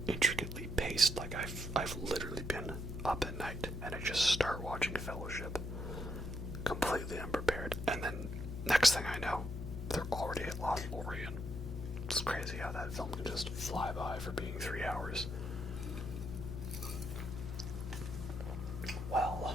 intricately paced. Like, I've literally been up at night and I just start watching Fellowship completely unprepared, and then next thing I know, they're already at Lothlorien. It's crazy how that film can just fly by for being 3 hours. Well,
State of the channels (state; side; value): noise; left; hum, 5 dB below the sound